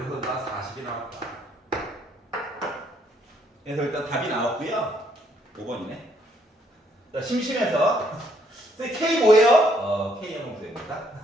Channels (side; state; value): both; normal; correlation 0.69